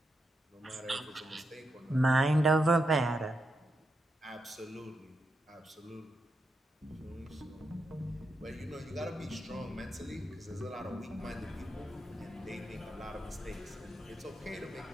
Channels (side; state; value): both; normal; correlation 0.84